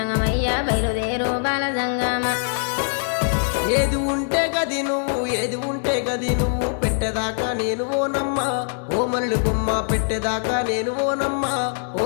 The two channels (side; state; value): right; silent; digital silence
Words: బయలుదేరు బాల జంగమా. ఏది ఉంటే గది నువ్వు ఏది ఉంటే గది నువ్వు పెట్టేదాకా నేను ఓనమ్మా ఓ మరళి బొమ్మ పెట్టేదాకా నేను ఓనమ్మా